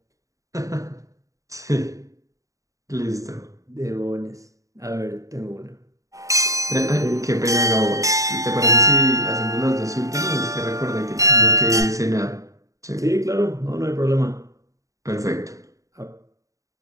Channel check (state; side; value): late; left; 0.16 ms